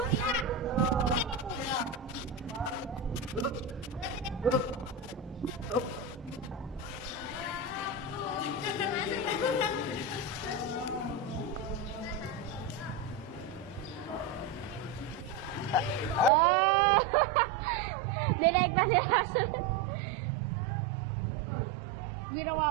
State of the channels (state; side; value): drops out; left; at 16.3 s